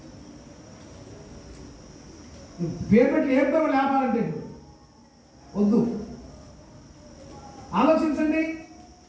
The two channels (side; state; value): both; identical; correlation 1.00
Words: పేరు పెట్టి ఏదో లేపాలంటే వద్దు, ఆలోచించండి.